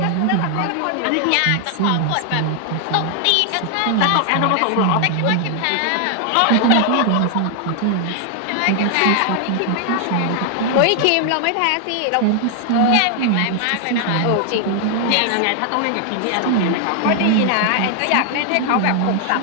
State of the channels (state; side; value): different; both; correlation 0.00